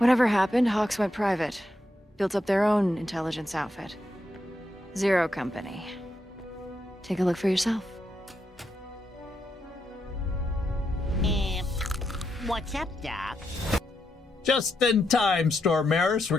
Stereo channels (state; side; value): normal; both; correlation 0.82